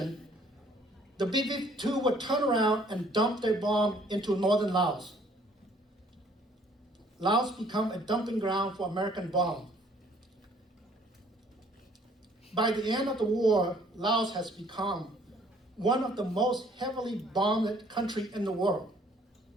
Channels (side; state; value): both; normal; correlation 0.60